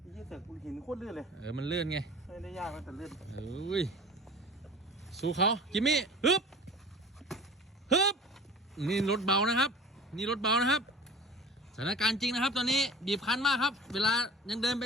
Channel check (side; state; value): both; normal; correlation 0.41